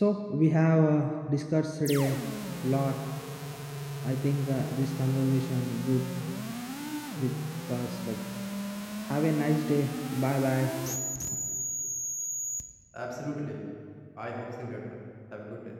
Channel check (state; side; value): identical; both; correlation 1.00